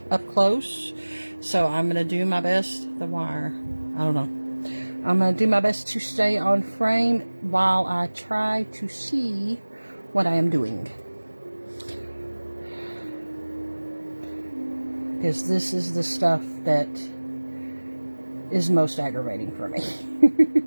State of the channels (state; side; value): inverted; both; correlation -1.00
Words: up close. So I'm going to do my best. The wire, I don't know. I'm going to do my best to stay on frame while I try to see what I am doing. Because this is the stuff that is most aggravating for me.